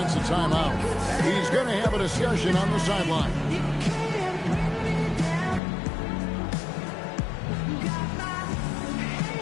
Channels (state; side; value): drops out; right; at 5.6 s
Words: a timeout. He's going to have a discussion on the sideline.